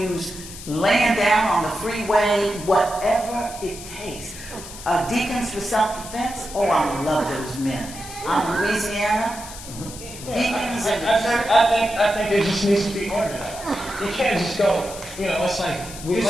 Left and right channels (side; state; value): left; noise; hiss, 13 dB below the sound